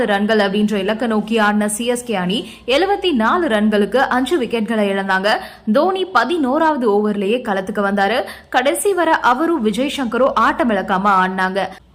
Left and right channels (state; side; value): identical; both; correlation 1.00